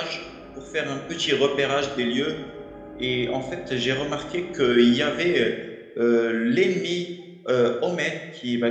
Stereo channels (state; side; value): identical; both; correlation 1.00